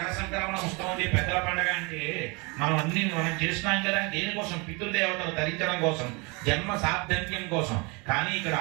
సంక్రమణ ఉత్సవం పెద్దల పండుగ అంటే మనం చేస్తున్నాం కదా, దేనికోసం? పితృదేవతలు తరించడం కోసం, జన్మ సార్థక్యం కోసం. కానీ ఇక్కడ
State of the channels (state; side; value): quieter; left; 29.1 dB